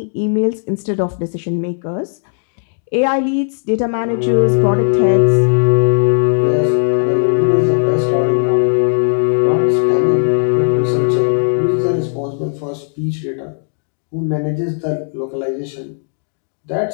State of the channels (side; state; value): right; silent; digital silence